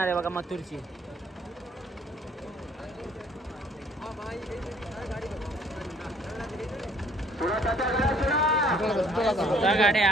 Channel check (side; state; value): both; normal; correlation 0.60